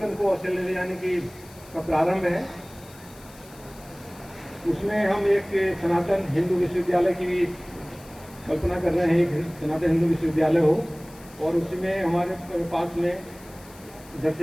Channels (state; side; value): noise; left; hiss, 22 dB below the sound